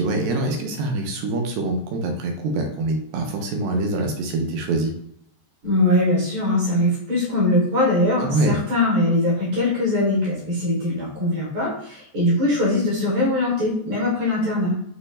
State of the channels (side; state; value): left; late; 14 ms